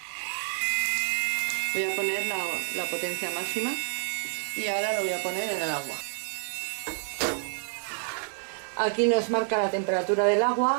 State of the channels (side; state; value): left; silent; 59 dB below the other